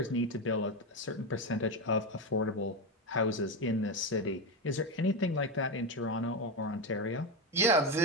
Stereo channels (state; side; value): normal; both; correlation 0.13